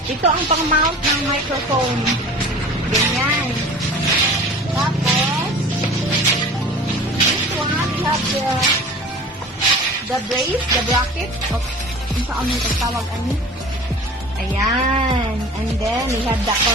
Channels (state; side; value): normal; both; correlation 0.41